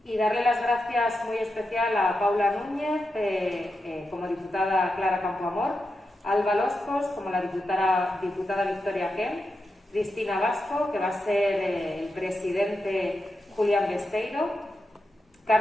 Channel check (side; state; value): both; normal; correlation 0.88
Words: y darle las gracias muy especial a Paula Núñez, como diputada Clara Campoamor, a Alba Loscos, como la diputada Victoria Ken, Cristina Vasco, que va a ser el presidente Julián Besteiro,